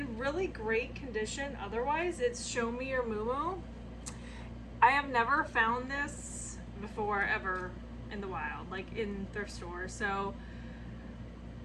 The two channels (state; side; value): identical; both; correlation 1.00